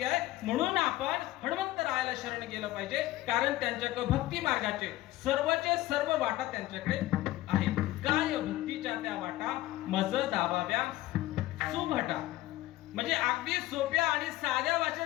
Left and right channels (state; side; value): quieter; right; 16.6 dB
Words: आहे. म्हणून आपण हनुमंतरायाला शरण गेलं पाहिजे, कारण त्यांच्याकडे भक्ती मार्गाचे सर्वचे सर्व वाटा त्यांच्याकडे आहेत. काय भक्तीच्या त्या वाटा मज दाबाव्या सुभटा. म्हणजे अगदी सोप्या आणि साध्या